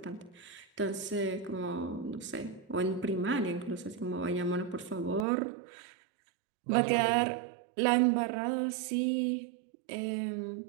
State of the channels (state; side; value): drops out; left; at 5.2 s